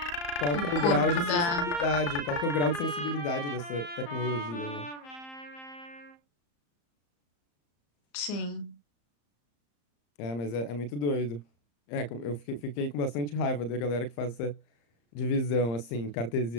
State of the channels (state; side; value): late; right; 34 ms